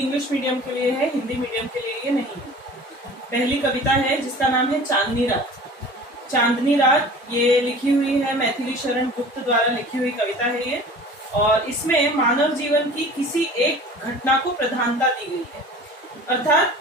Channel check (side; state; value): both; normal; correlation 0.42